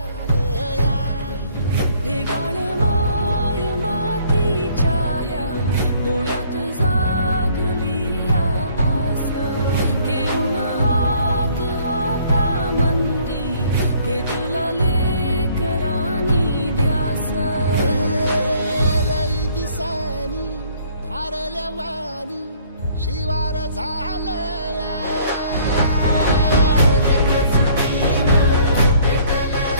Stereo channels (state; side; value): inverted; both; correlation -0.59